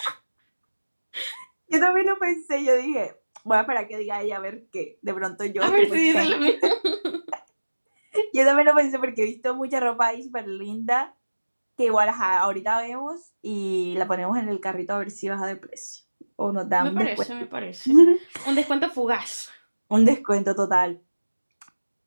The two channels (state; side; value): inverted; both; correlation -1.00